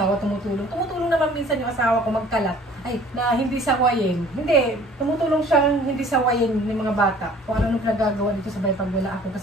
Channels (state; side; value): normal; both; correlation 0.52